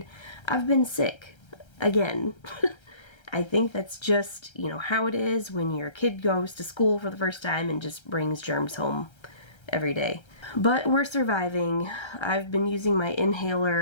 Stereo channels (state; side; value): late; right; 1.3 ms